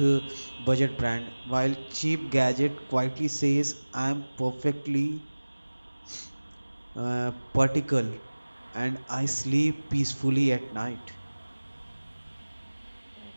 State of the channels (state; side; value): inverted; both; correlation -1.00